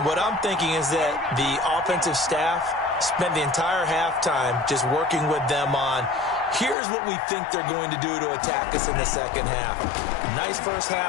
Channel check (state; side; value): drops out; right; at 6.8 s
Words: what I'm thinking is that the offensive staff spent the entire halftime just working with them on, here's what we think they're going to do to attack us in the second half. Nice first